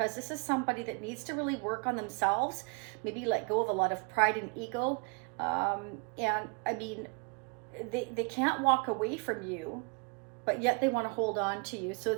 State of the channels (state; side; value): quieter; left; 32.4 dB